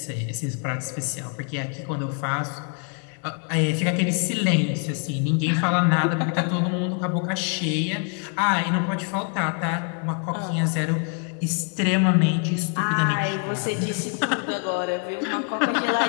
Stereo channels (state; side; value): quieter; right; 39.7 dB